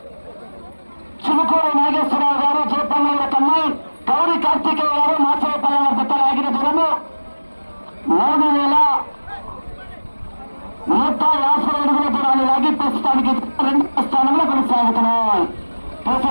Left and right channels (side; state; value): both; inverted; correlation -1.00